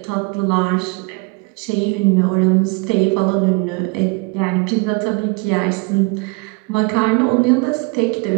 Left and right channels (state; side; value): quieter; left; 28.5 dB